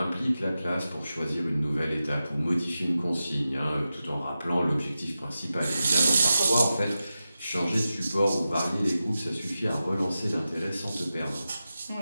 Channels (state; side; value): inverted; both; correlation -0.92